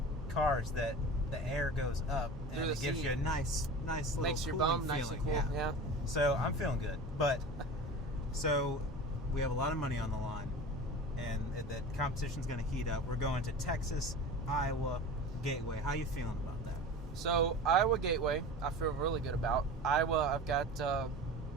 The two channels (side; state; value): both; normal; correlation 0.34